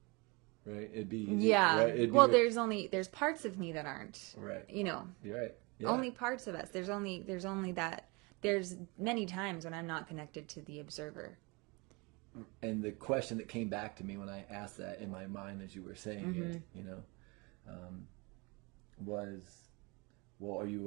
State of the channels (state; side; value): quieter; left; 27.8 dB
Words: Right? It'd be easy, Yeah. right? It'd Well, be there's parts of me that aren't. right. You know, You're right. Yeah. only parts of us. There's only that there's many times when I'm not connected to the observer. And the question that came back to me when I asked that in my mind as you were saying it, um, was, well, are